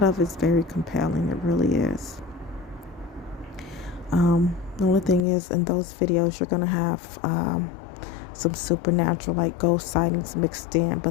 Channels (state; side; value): drops out; right; at 5.2 s